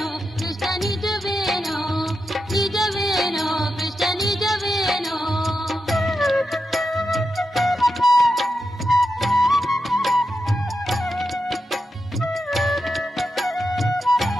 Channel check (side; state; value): both; normal; correlation 0.88